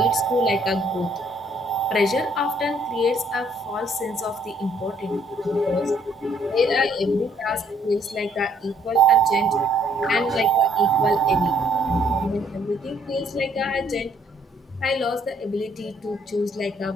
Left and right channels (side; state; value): both; normal; correlation 0.65